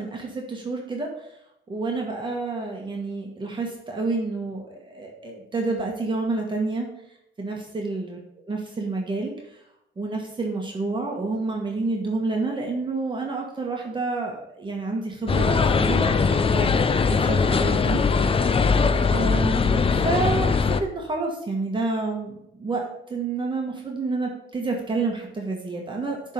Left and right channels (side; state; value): both; normal; correlation 0.61